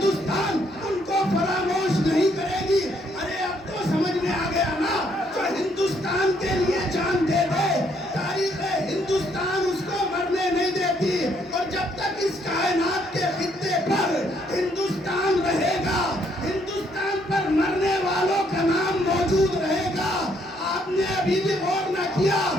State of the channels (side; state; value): both; normal; correlation 0.70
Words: ان کو فراموش نہیں کرے گی۔ ارے اب تو سمجھ میں آ گیا نا، جو ہندوستان کے لیے جان دے دے تاریخ ہندوستان اس کو مرنے نہیں دیتی، اور جب تک اس کائنات کے خطے پر ہندوستان رہے گا، ہندوستان پر مرنے والوں کا نام موجود رہے گا۔ آپ نے ابھی بھی غور نہ کیا